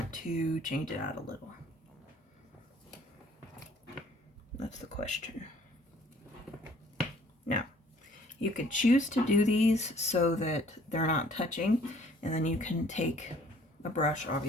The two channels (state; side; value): normal; both; correlation 0.57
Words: to change it out a little? That's the question. Now, you could choose to do these so that they're not touching, and then you can take a brush,